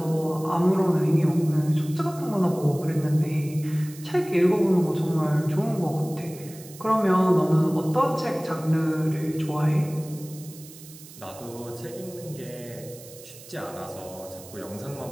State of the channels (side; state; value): right; noise; hiss, 18 dB below the sound